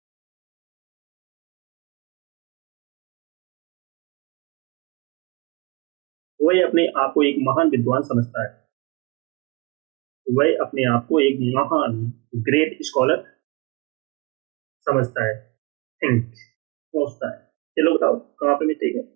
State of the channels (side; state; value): left; quieter; 24.4 dB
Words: वह अपने आप को एक महान विद्वान समझता है। वह अपने आप को एक महान ग्रेट स्कॉलर समझता है। थिंक सोचता है। चलो बताओ कहां पे मिस्टेक है।